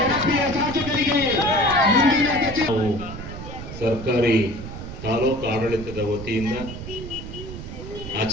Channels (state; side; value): noise; right; rumble, 10 dB below the sound